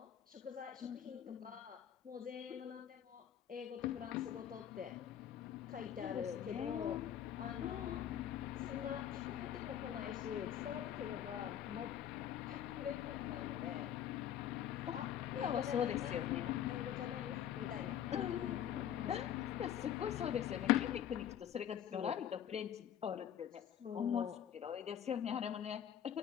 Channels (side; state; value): right; quieter; 10.1 dB